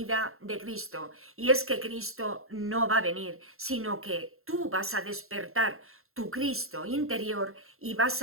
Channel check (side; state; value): left; late; 0.62 ms